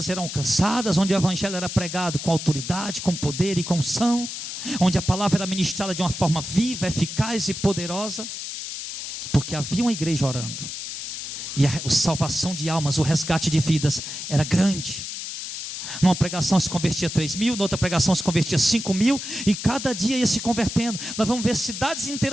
eram alcançadas, onde o evangelho era pregado com autoridade, com poder e com unção, onde a palavra era ministrada de uma forma viva, eficaz e poderosa, porque havia uma igreja orando, e a salvação de almas, o resgate de vidas era grande. Numa pregação se convertia 3.000, noutra pregação se convertia 5.000, e cada dia ia se convertendo. Nós vamos ver cidades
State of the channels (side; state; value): left; noise; hiss, 7 dB below the sound